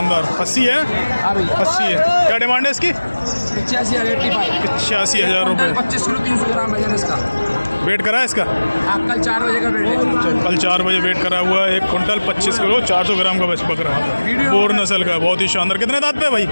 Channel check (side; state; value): both; inverted; correlation -1.00